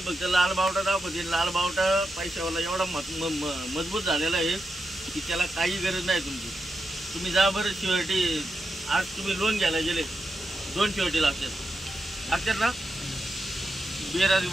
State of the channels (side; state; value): both; normal; correlation 0.87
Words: फक्त लाल बावटा दाखवते. लाल बावटा पैशावाला एवढा मजबूत झालेला आहे की त्याला काही गरज नाही तुमची. तुम्ही जा बरं शिवर्टी. आज तुम्ही लोन घ्यायला गेले, 2 शिवर्टी लागतात ना.